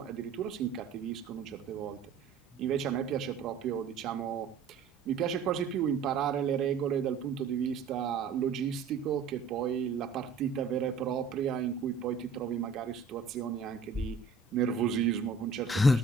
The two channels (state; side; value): quieter; left; 5.0 dB